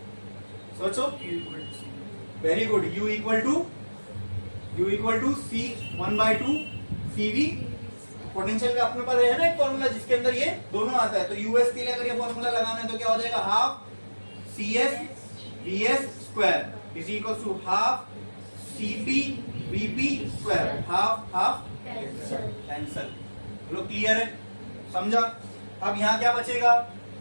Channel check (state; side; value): inverted; both; correlation -1.00